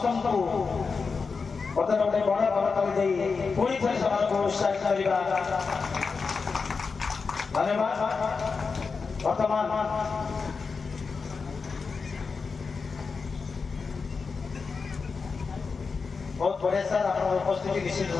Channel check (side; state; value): right; quieter; 4.9 dB